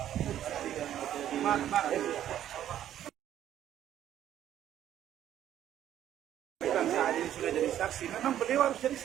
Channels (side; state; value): left; quieter; 11.2 dB